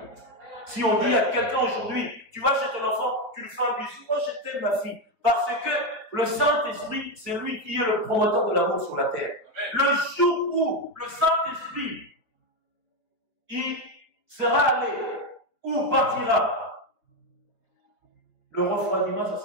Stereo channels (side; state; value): left; late; 4.4 ms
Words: Si on dit à quelqu'un aujourd'hui, tu vas chez ton enfant, tu lui fais un bisou, moi je t'aime ma fille, parce que le Saint-Esprit, c'est lui qui est le promoteur de l'amour sur la terre. Amen. Le jour où le Saint-Esprit, il sera allé, ou partira, le refroidiment, ça ne